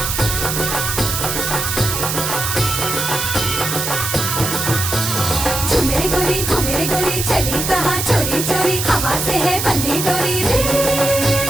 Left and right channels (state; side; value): noise; right; hiss, 2 dB below the sound